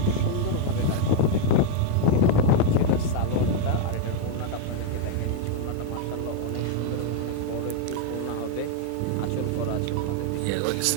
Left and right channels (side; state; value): both; different; correlation 0.01